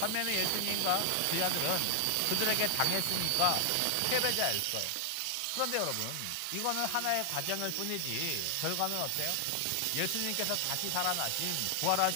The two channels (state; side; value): different; both; correlation 0.00